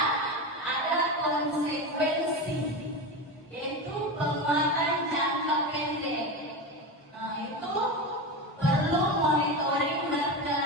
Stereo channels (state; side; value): normal; both; correlation 0.21